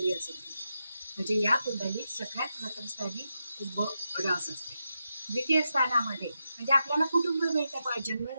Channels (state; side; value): inverted; both; correlation -0.87